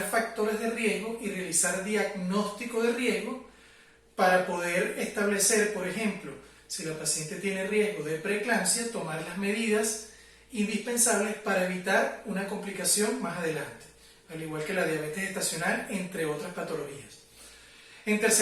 factores de riesgo y realizar diagnóstico de riesgo para poder establecer, por ejemplo, si la paciente tiene riesgo de preeclampsia, tomar las medidas indispensables para evitar una complicación más adelante, al igual que la diabetes gestacional, entre otras patologías. En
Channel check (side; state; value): both; identical; correlation 1.00